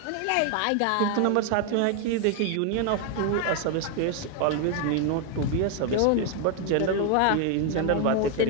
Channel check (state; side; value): different; both; correlation 0.01